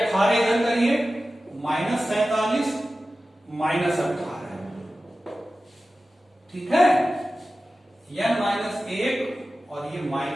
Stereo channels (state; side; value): normal; both; correlation 0.95